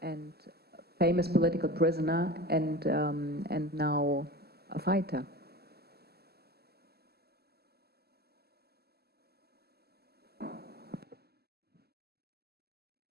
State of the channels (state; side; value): late; left; 0.46 ms